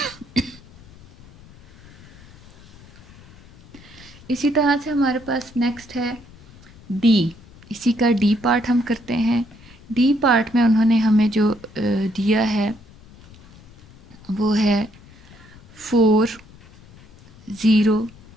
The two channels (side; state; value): left; noise; rumble, 23 dB below the sound